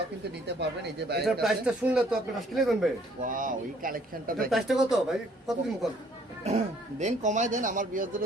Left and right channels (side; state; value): both; normal; correlation 0.61